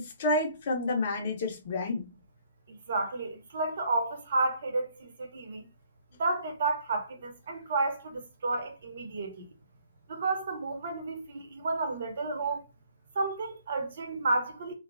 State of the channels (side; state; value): both; inverted; correlation -0.65